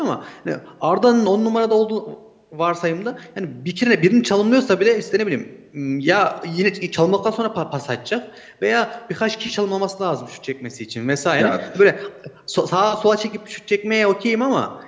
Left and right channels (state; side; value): identical; both; correlation 1.00